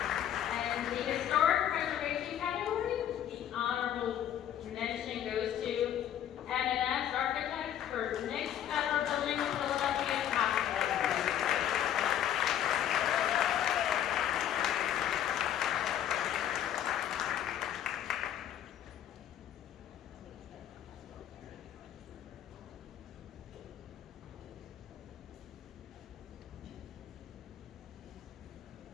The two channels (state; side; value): quieter; right; 10.6 dB